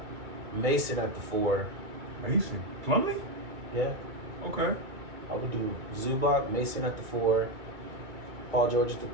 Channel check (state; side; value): late; left; 2.1 ms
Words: Mason at the 4. Mason? Plumlee? Yeah. Okay. I would do Zubac, Mason at the 4, Paul George at the